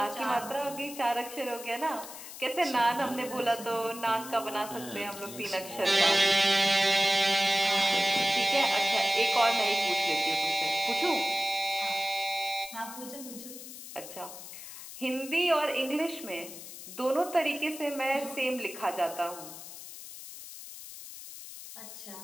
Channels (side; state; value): left; noise; hiss, 13 dB below the sound